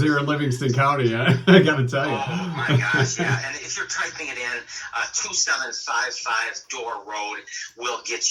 here in Livingston County, I got to tell you. Oh, my gosh, yeah. And if you're typing it in, 2755 Door Road will get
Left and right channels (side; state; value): both; identical; correlation 1.00